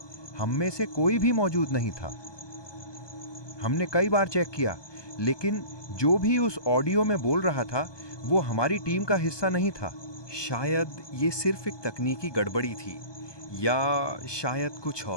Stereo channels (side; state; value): right; late; 1.2 ms